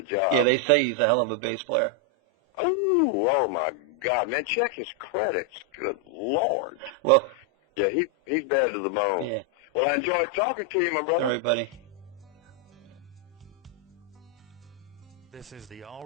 job. Yeah, they say he's a hell of a bass player. Oh my God, man! Check his credits. Good Lord. Well. Yeah, he's bad to the bone. Yeah. Well, I enjoyed talking to you, my brother. All right, buddy. This is the All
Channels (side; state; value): both; normal; correlation 0.00